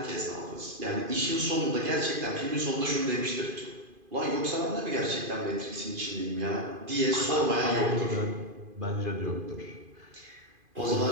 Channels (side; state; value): left; late; 2.5 ms